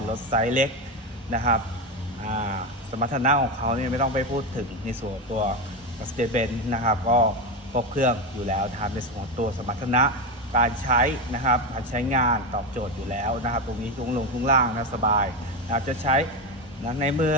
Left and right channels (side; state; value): both; normal; correlation 0.14